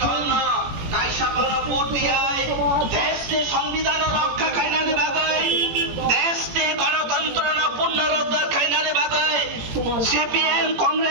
Golno, Kaishapana Putia, Teste, Songvidano, Kainani Bagay, Teste, Gonatantrana, Punara, Kainani Bagay, CPM,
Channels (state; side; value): late; left; 18 ms